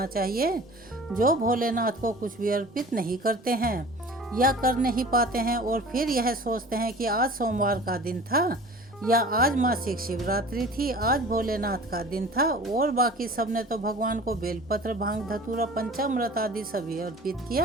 चाहिए जो भोलेनाथ को कुछ भी अर्पित नहीं करते हैं या कर नहीं पाते हैं और फिर यह सोचते हैं कि आज सोमवार का दिन था या आज मासिक शिवरात्रि थी, आज भोलेनाथ का दिन था और बाकी सबने तो भगवान को बेलपत्र, भांग, धतूरा, पंचामृत आदि सभी अर्पित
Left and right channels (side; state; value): both; normal; correlation 0.43